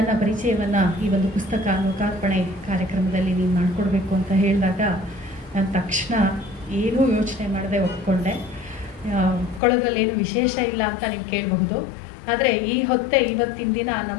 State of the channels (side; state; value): right; drops out; at 9.6 s